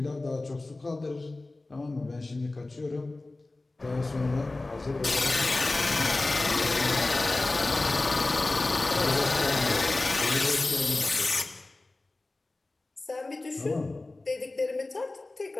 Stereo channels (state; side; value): quieter; right; 3.1 dB